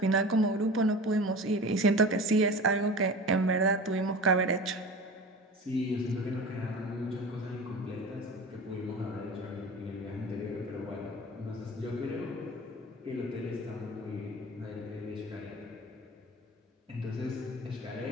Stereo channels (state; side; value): normal; both; correlation 0.34